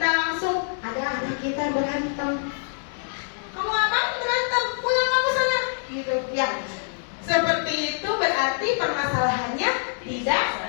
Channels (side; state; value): right; silent; 61 dB below the other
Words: langsung ada anak kita berantem. Kamu apa berantem? Pulang kamu sana. Gitu, ya. Seperti itu berarti permasalahannya tidak